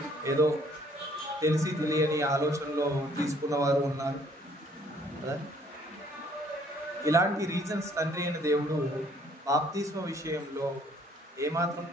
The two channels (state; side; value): normal; both; correlation 0.62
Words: ఏదో తెలిసి తెలియని ఆలోచనలో తీసుకున్న వారు ఉన్నారు కదా. ఇలాంటి రీజన్స్ తండ్రి అయిన దేవుడు బాప్తిస్మ విషయంలో ఏమాత్రం